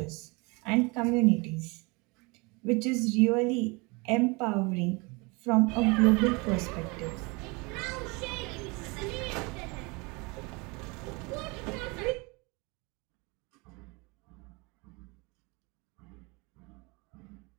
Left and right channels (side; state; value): left; quieter; 27.7 dB